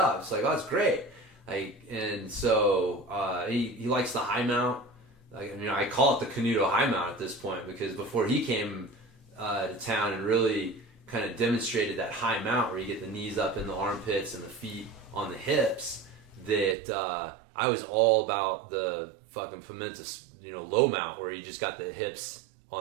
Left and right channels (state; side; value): drops out; left; at 16.8 s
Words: It's like, oh, that's great. Like, and so he likes the high mount. Like, I call it the Canuto high mount at this point because before he came to town and really kind of demonstrated that high mount where you get the knees up in the armpits and the feet on the hips, that I was all about the fucking Pimenta, low mount where you just got the hips